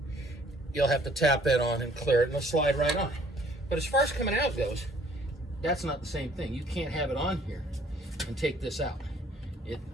you'll have to tap that on and clear it and it'll slide right on. But as far as coming out goes, that's not the same thing. You can't have it on here and take this out.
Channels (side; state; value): both; normal; correlation 0.59